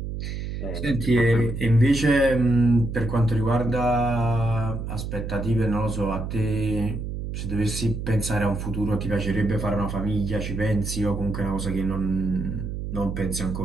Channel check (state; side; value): noise; right; hum, 5 dB below the sound